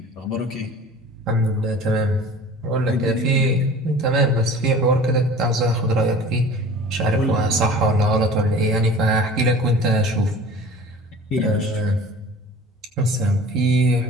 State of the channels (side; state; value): both; normal; correlation 0.42